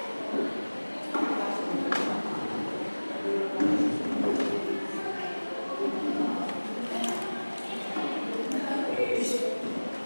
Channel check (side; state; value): both; inverted; correlation -1.00